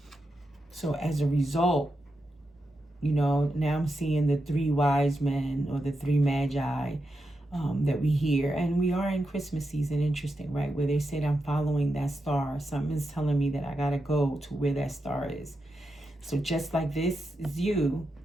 So as a result, you know, now I'm seeing the 3 wise men or the 3 magi that we hear. And we are in Christmas season, interesting, right? Where they said, I'm following that star. Something's telling me that I got to go to where that star is. So just like this is you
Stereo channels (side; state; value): both; normal; correlation 0.87